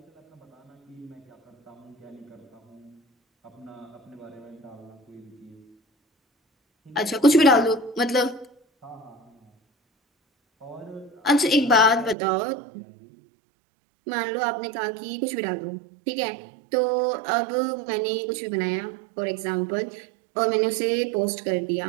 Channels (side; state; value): left; drops out; at 12.2 s